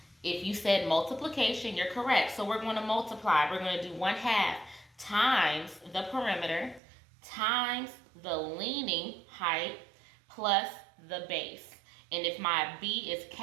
If you said multiplication, you're correct. So we're going to multiply. We're going to do 1/2 times the perimeter times the leaning height plus the base. And if my B is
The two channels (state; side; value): drops out; left; at 6.8 s